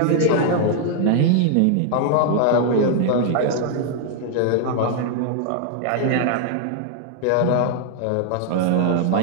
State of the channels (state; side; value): different; both; correlation 0.00